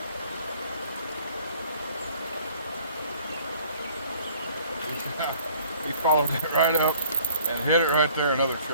He followed it right up and hit it right there, another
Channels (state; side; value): inverted; both; correlation -0.55